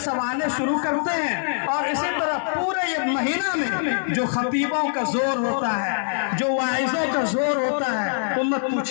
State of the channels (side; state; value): right; silent; 63 dB below the other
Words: शुरू करते हैं और इसी तरह पूरे ये महीना में जो खतीबों का जोर होता है, जो वाइजों का जोर होता है, उम्मत